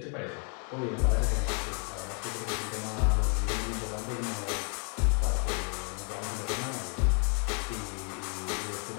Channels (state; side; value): quieter; right; 39.6 dB